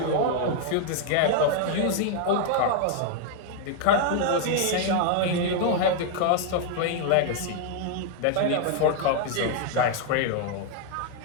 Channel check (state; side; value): different; both; correlation 0.00